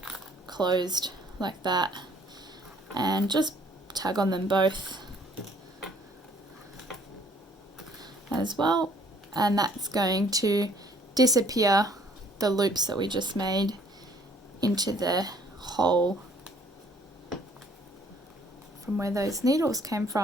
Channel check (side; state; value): both; normal; correlation 0.60